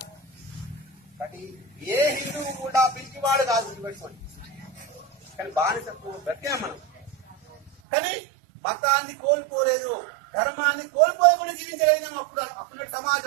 కానీ ఏ హిందువు కూడా పిలిచివాడు కాదు గుర్తుపెట్టుకోండి. కానీ బానిసత్వం బ్రతికాం మనం. కానీ మతాన్ని కోల్పోలేదు, ధర్మాన్ని కోల్పోలేకుండా జీవించగలిగినాం. అప్పుడు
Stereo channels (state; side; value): drops out; left; at 7.7 s